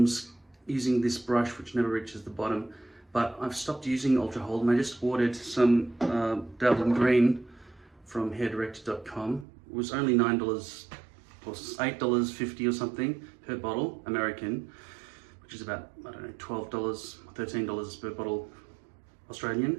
using this brush which never reaches the bottom, but I've stopped using Ultra Hold and I just ordered some Dabbling Green from hairdirector.com. It was only $9 or $8.50 or something per bottle, American, which is about, I don't know, $12, $13 per bottle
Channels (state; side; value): drops out; left; at 9.5 s